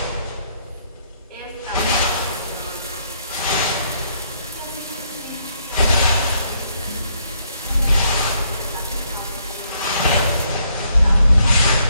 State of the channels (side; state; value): both; inverted; correlation -0.72